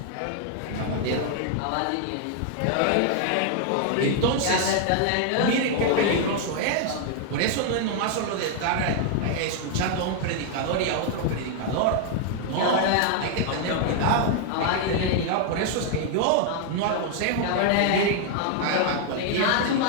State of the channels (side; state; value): both; different; correlation 0.00